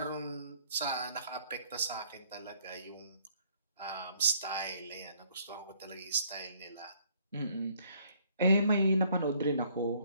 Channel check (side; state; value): both; inverted; correlation -0.64